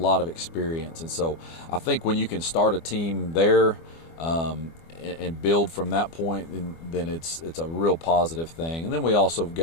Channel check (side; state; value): right; late; 24 ms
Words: of experience. And so I think when you can start a team there and build from that point, then it's a real positive thing. And then we also